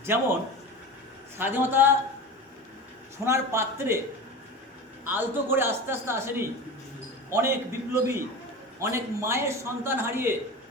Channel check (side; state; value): both; normal; correlation 0.30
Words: যেমন স্বাধীনতা সোনার পাত্রে আলতো করে আস্তে আস্তে আসেনি। অনেক বিপ্লবী, অনেক মায়ের সন্তান হারিয়ে,